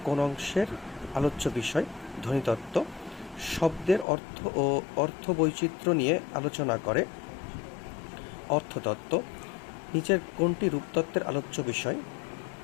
কোন অংশের আলোচ্য বিষয়? ধ্বনিতত্ত্ব। শব্দের অর্থ ও অর্থবৈচিত্র্য নিয়ে আলোচনা করে অর্থতত্ত্ব। নিচের কোনটি রূপতত্ত্বের আলোচ্য বিষয়?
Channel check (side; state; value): right; drops out; at 4.0 s